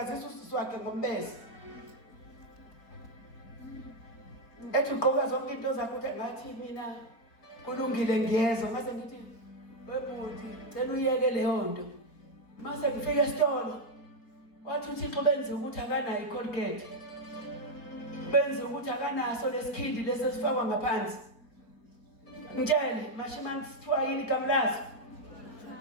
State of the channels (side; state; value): right; late; 4.4 ms